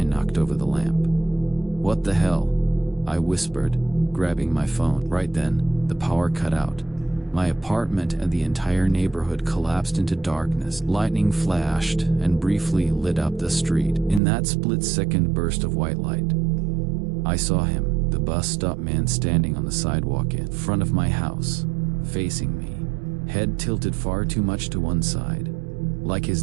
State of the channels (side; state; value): left; drops out; at 14.2 s